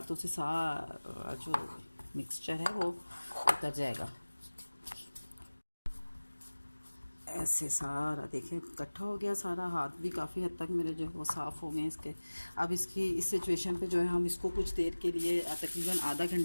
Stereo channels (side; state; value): both; inverted; correlation -1.00